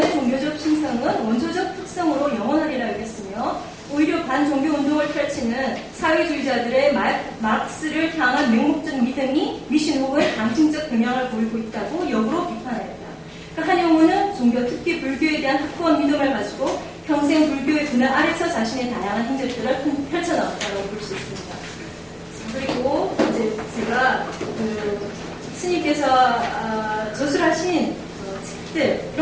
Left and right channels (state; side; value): identical; both; correlation 1.00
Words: 종교적 신성은 원초적 특성으로 영원하리라 여겼으며, 오히려 반종교 운동을 펼치는 사회주의자들의 마르크스를 향한 맹목적 믿음이 미신 혹은 강심적 경향을 보이고 있다고 역으로 비판하였다. 그러니까 한용우는 종교, 특히 불교에 대한 확고한 믿음을 가지고 평생 불교의 그늘 아래서 자신의 다양한 행적들을 펼쳐나왔다고 볼 수 있습니다. 그리고 이제 제가 스님께서 저술하신 책들,